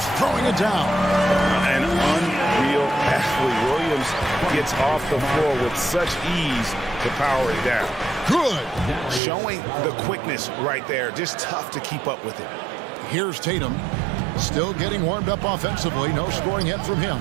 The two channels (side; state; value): left; drops out; at 9.2 s